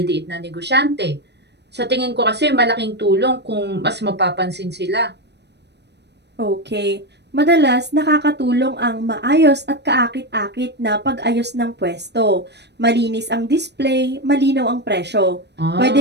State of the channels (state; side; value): late; left; 0.50 ms